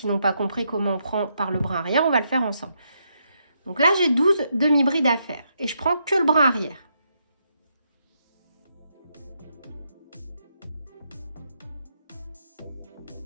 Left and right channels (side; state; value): both; inverted; correlation -0.79